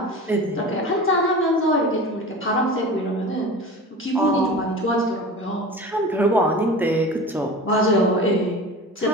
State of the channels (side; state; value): both; normal; correlation 0.34